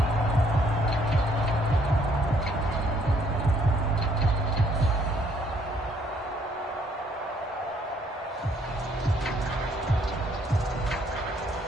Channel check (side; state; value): both; normal; correlation 0.66